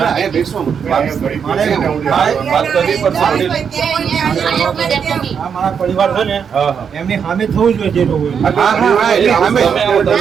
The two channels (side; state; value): left; quieter; 7.0 dB